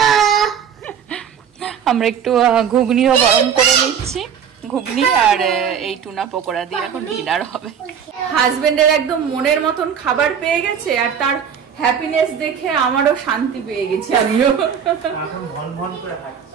আমরা একটু ঘুগনিও গরম করে নিচ্ছি, ঘুগনি আর এই টুনা পকোড়া দিয়ে এখন ডিনার হবে। হাজবেন্ডের একদম মনের মতন খাবার পেয়ে গেছে, আর তার হ্যাপিনেস দেখে আমারও শান্তি পেয়ে গেছে। আমিও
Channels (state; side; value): quieter; left; 7.8 dB